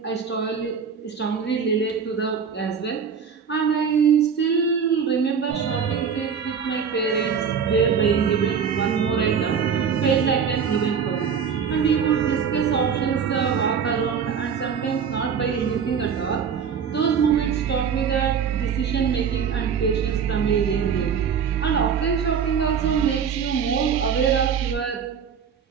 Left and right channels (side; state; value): left; quieter; 6.8 dB